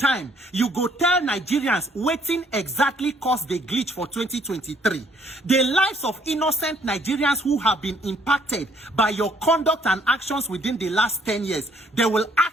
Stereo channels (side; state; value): both; normal; correlation 0.64